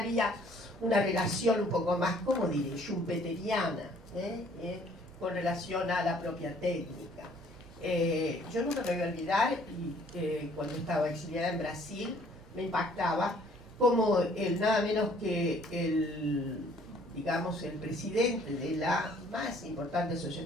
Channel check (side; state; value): both; normal; correlation 0.59